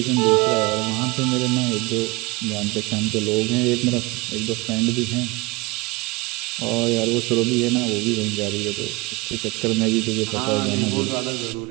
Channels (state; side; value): quieter; left; 24.3 dB